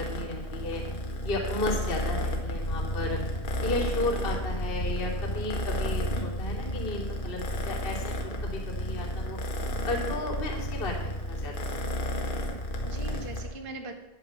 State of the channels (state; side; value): late; right; 2.4 ms